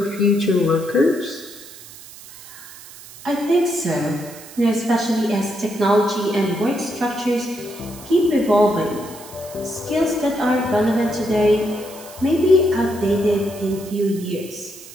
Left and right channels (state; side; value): noise; right; hiss, 18 dB below the sound